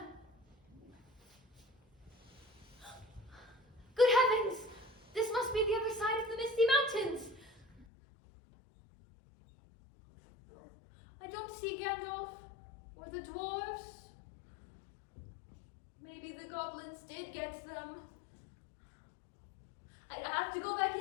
Good heavens! This must be the other side of the Misty Mountains. I don't see Gandalf or the dwarves. Maybe the goblins did get them. I'd have to go back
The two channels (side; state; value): right; drops out; at 7.9 s